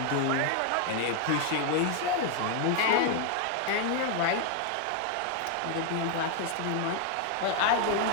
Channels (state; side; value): different; both; correlation 0.00